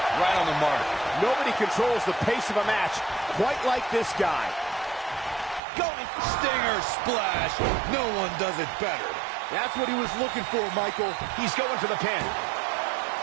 Right on the mark. Nobody controls the pace of a match quite like this guy. Going Stinger splash. No one does it better. That's what he was looking for, Michael. He's going for the pin.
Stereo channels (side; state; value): left; drops out; at 5.6 s